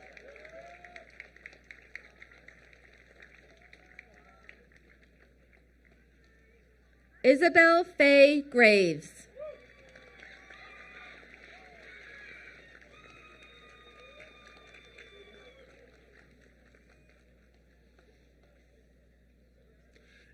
Isabel Faye Graves.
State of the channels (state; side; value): identical; both; correlation 1.00